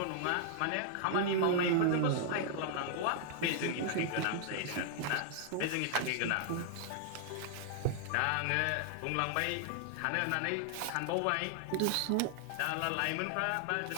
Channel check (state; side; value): different; both; correlation 0.00